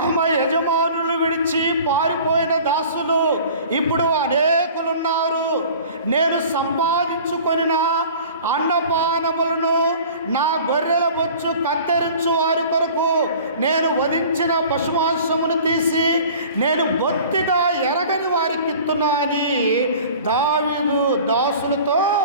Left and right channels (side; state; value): both; inverted; correlation -0.44